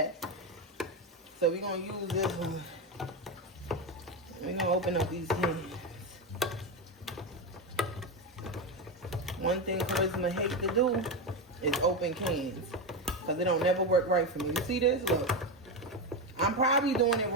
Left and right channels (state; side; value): normal; both; correlation 0.13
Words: So we're going to use this one. We're going to open up these cans. One thing Charisma hates to do is open cans. Because it don't never work right for me. You see this? Look. I'm probably doing it